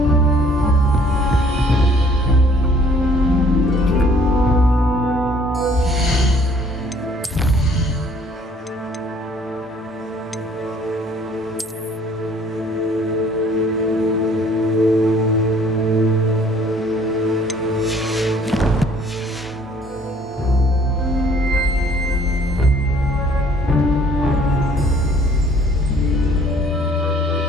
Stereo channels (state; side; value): normal; both; correlation 0.58